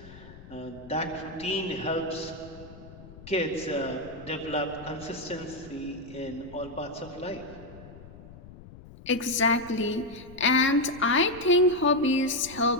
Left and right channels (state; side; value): noise; left; rumble, 18 dB below the sound